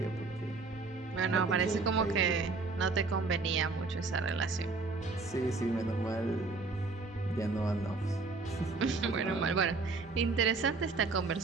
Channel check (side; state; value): left; quieter; 3.9 dB